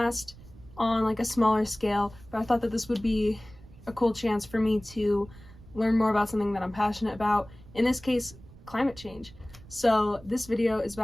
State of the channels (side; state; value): right; noise; rumble, 20 dB below the sound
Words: on like a smaller scale, but I thought that this would be a cool chance for me to learn more about something that I'm passionate about. In this case, climate change. So this video is